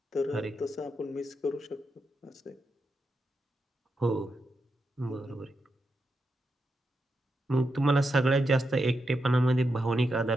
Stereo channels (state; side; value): normal; both; correlation 0.86